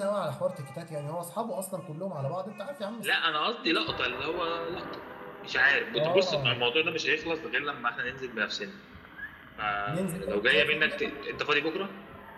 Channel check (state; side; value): identical; both; correlation 1.00